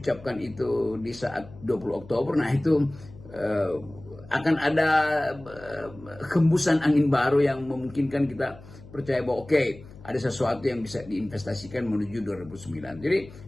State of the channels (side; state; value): left; noise; hum, 19 dB below the sound